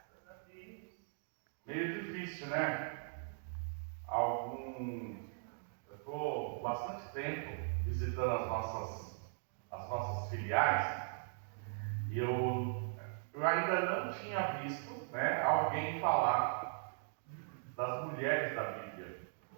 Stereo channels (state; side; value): silent; left; digital silence